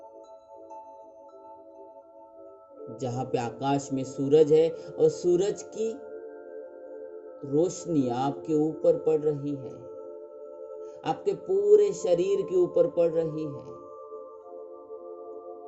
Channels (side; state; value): both; identical; correlation 1.00